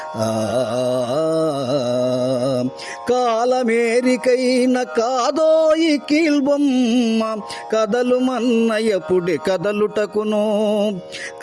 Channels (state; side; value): identical; both; correlation 1.00